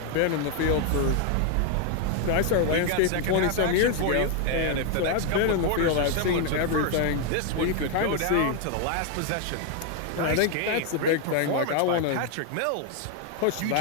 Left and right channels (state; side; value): different; both; correlation 0.00